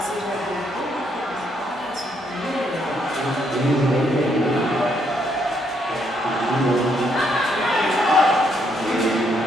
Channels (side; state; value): both; normal; correlation 0.73